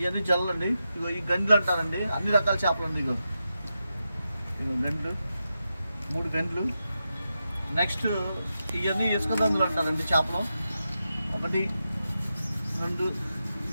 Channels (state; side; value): inverted; both; correlation -0.89